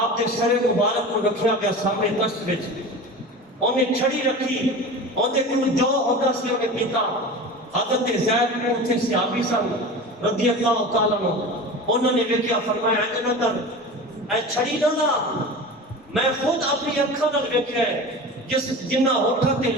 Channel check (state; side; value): normal; both; correlation 0.33